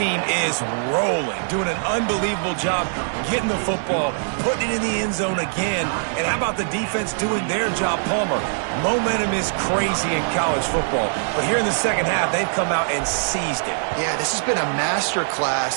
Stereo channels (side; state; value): left; silent; digital silence